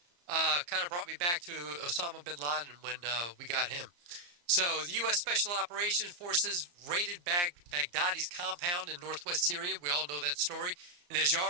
Kind of brought me back to Osama bin Laden when we got him. So, the U.S. Special Operations Forces raided Baghdadi's compound in northwest Syria. We all know that story. And as you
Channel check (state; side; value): late; left; 34 ms